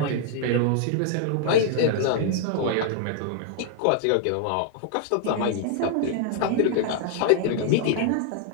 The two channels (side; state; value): both; different; correlation 0.00